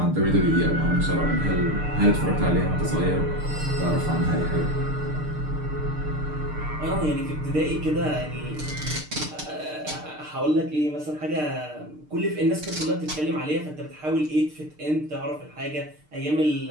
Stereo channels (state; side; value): late; left; 6.6 ms